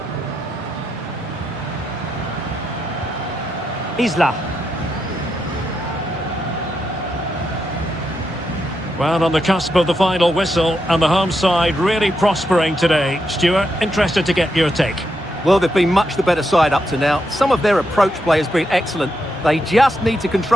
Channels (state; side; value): normal; both; correlation 0.83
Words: Isla. Well, on the cusp of the final whistle, and the home side really prospering today. Stuart, interested to get your take. Well, they've been much the better side up to now. Some of their approach play has been excellent. They just need to